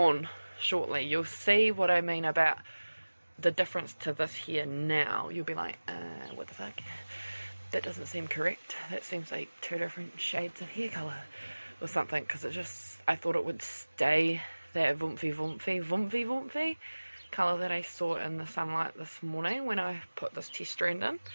shortly, you'll see what I mean about the difference to this here now. You'll be like, what the fuck, that doesn't seem correct, that seems like 2 different shades of hair color or something, because it just, I thought it would stay that vumpy colour that I saw in the sunlight this morning when I put this test strand in.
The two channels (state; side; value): inverted; both; correlation -1.00